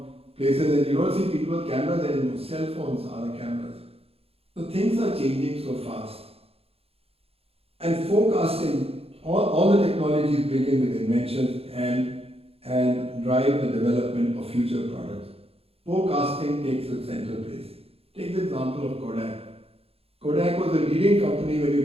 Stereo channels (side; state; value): left; late; 0.28 ms